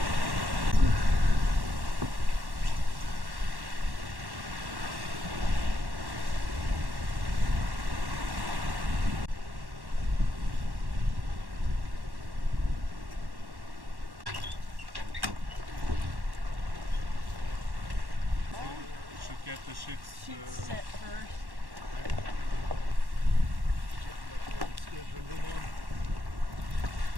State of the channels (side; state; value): left; late; 1.1 ms